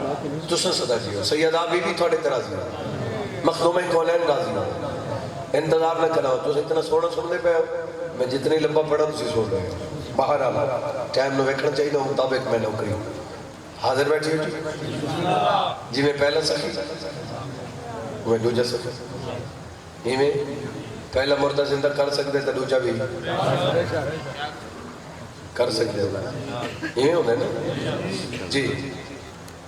تو سن صدا جی ہو سیدہ بی بی تھوڑے ترازی ہو مخدوم کونین راضی ہو انتظار نہ کرنا ہو تو اتنا سونا سننے پہ ہو میں جتنی لمبا پڑھا تو سن رہے ہو باہر آنا ٹائم نو ویکھنا چاہیے نو مطابق میں نوکری ہوں حاضر بیٹھی ہو جی میں پہلا سخی میں دوجہ سخی ہی میں پہلا مردہ زندہ کر سکتے تھا دوجہ بھی کر سکتے ہو یہ ہونا ہے نا جی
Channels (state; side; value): identical; both; correlation 1.00